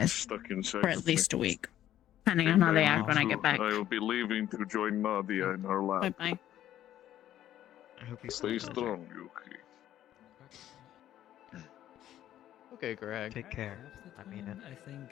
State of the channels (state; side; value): quieter; right; 12.2 dB